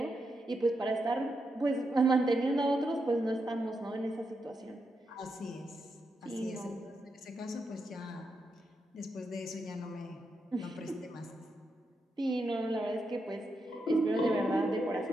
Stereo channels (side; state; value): both; normal; correlation 0.84